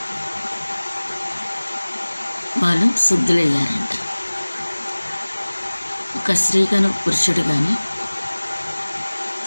వాళ్ళు శుద్ధులయ్యారంట. ఒక స్త్రీ కానీ పురుషుడు కానీ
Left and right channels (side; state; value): both; inverted; correlation -1.00